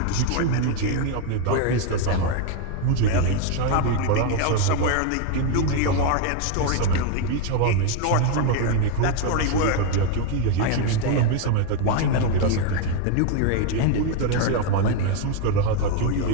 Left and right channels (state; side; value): different; both; correlation 0.01